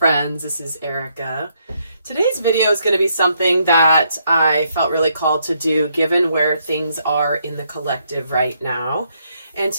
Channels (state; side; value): inverted; both; correlation -0.74